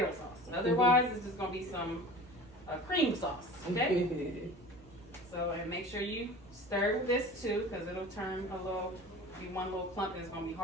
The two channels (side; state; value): both; normal; correlation 0.39